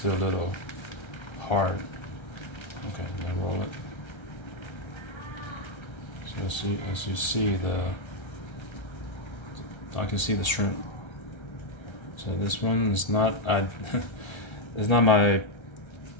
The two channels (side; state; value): right; late; 1.3 ms